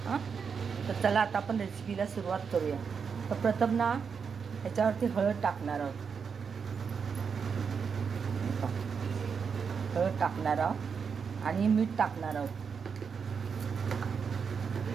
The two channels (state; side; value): quieter; left; 6.1 dB